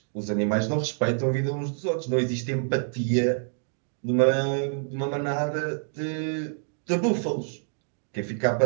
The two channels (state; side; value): silent; left; digital silence